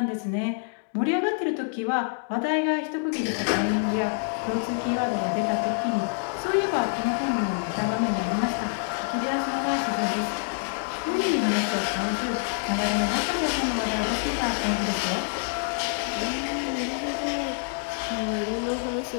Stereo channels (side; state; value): right; silent; digital silence